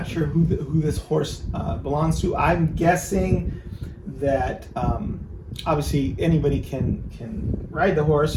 sure who this horse belongs to. I'm guessing that obviously anybody can ride the horse,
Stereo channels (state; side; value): identical; both; correlation 1.00